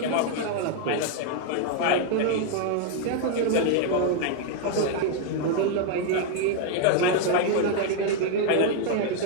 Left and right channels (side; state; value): both; different; correlation 0.00